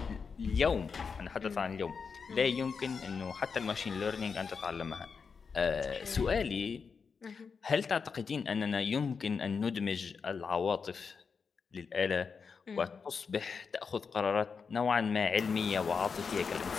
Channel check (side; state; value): right; quieter; 5.6 dB